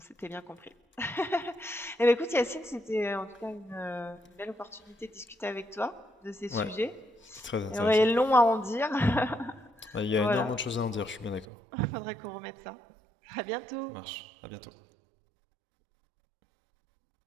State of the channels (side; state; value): left; drops out; at 11.5 s